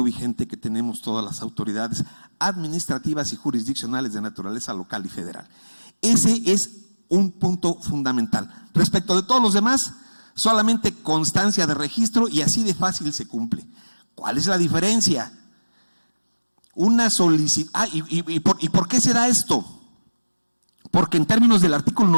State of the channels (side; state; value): both; inverted; correlation -1.00